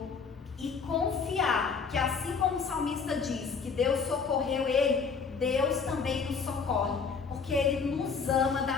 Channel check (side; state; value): right; quieter; 5.5 dB